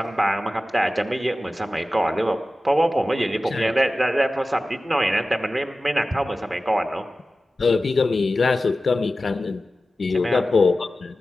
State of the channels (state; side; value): normal; both; correlation 0.94